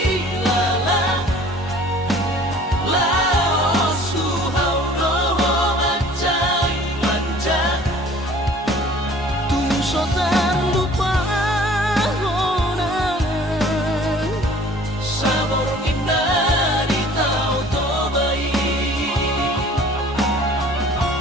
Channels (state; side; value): normal; both; correlation 0.50